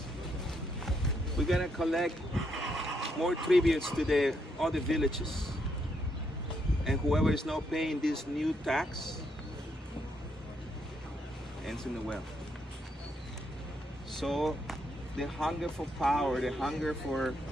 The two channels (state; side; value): normal; both; correlation 0.76